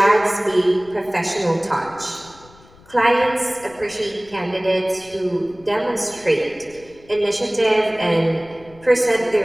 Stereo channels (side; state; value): left; noise; rumble, 25 dB below the sound